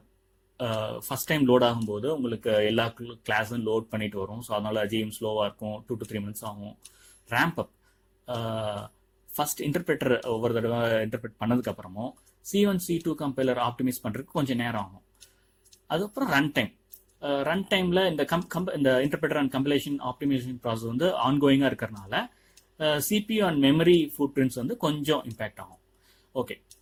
First time load ஆகும்போது உங்களுக்கு எல்லா கிளாஸும் லோட் பண்ணிட்டு வரும். ஸோ அதனால JVM ஸ்லோவாக இருக்கும், 2 to 3 minutes ஆகும். ரேம்ப் அப், ஃபர்ஸ்ட் இன்டர்பிரேட்டர் ஒவ்வொரு தடவை இன்டர்பிரேட் பண்ணதுக்கு அப்புறமும் C1 C2 கம்பைலர் ஆப்டிமைஸ் பண்றதுக்கு கொஞ்சம் நேரம் ஆகும். அதுக்கப்புறம் ரன் டைம், ரன் டைம்ல இந்த interpreter and compilation optimisation process வந்து ஆன்கோயிங்காக இருக்கிறனால CPU and memory footprints வந்து கொஞ்சம் இம்பேக்ட் ஆகும். ஓகே,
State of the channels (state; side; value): identical; both; correlation 1.00